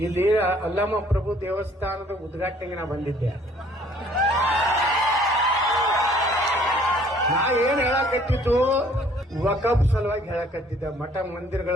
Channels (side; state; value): both; normal; correlation 0.58